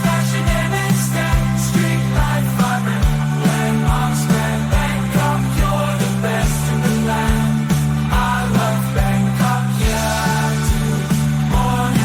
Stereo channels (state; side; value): identical; both; correlation 1.00